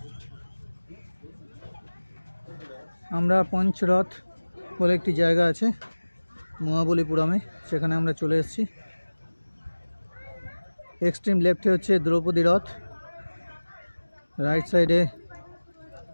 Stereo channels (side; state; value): both; inverted; correlation -1.00